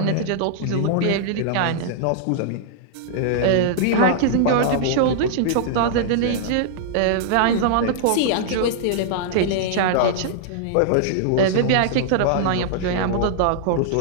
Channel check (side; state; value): both; different; correlation -0.01